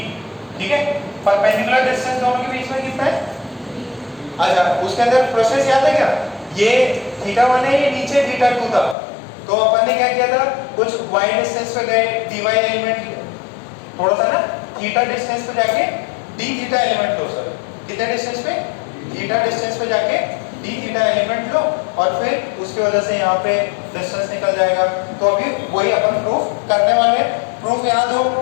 ठीक है। परपेंडिकुलर डिस्टेंस दोनों के बीच में कितना है, अच्छा उसके अंदर प्रोसेस याद है क्या, ये थीटा 1 है, ये नीचे थीटा 2 था, तो अपन ने क्या किया था, कुछ y डिस्टेंस पे गए, dy एलिमेंट थोड़ा सा ना थीटा डिस्टेंस पे जाके d थीटा एलिमेंट लो, सर कितने डिस्टेंस पे, थीटा डिस्टेंस पे जाके d थीटा एलिमेंट लो और फिर उसकी वजह से यहाँ पे डिस्टेंस निकल जाएगा। तो अभी वही अपन प्रूफ करने वाले हैं, प्रूफ याद हो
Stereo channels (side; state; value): right; drops out; at 9.0 s